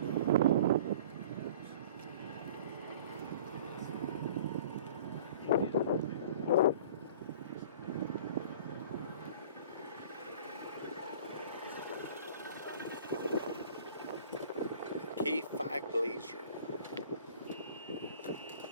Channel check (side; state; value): both; inverted; correlation -0.45